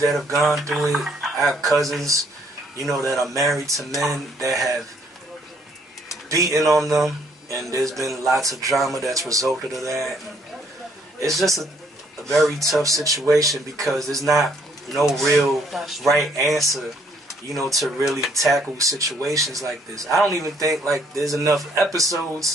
have gone through it. I have cousins, that are married to men that have beaten on them, and there's been lots of drama that's resulted of that. It's just a very tough situation, because there's not no real right answer, to really tackle situations like this. I don't even think like there's enough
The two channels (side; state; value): both; normal; correlation 0.66